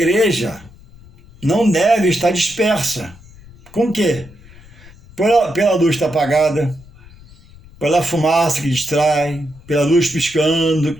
não deve estar dispersa. Com o quê? Pela luz estar apagada, pela fumaça que distrai, pela luz piscando, que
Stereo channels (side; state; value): left; noise; rumble, 23 dB below the sound